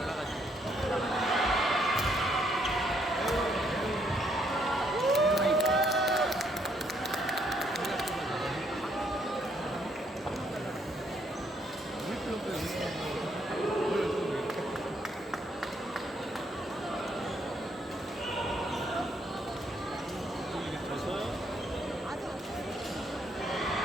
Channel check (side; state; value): both; normal; correlation 0.71